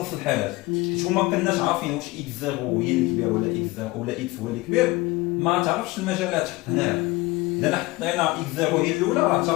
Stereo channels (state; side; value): quieter; right; 21.0 dB